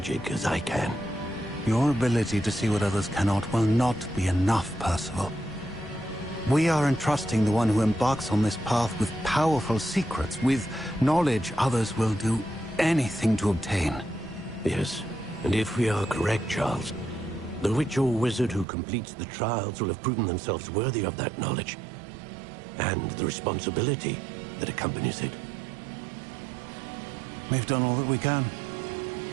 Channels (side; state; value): left; drops out; at 18.7 s